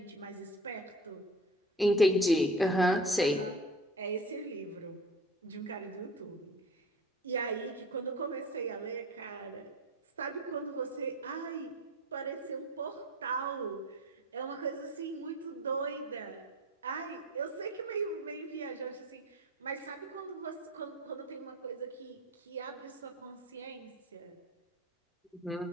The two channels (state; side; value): normal; both; correlation 0.39